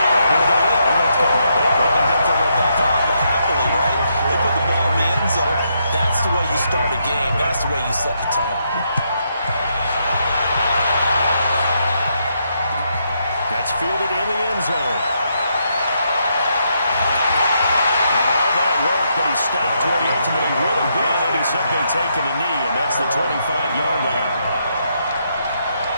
it. They're going to throw it back on, but happily, right? They put the ball in the end zone. That's the way you start a game. That's the way you set the tone. That's fielded in the end zone. But he stopped where he ultimately would have been, and he's simply taken a knee, and that's the 25-yard line.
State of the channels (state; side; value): inverted; both; correlation -0.78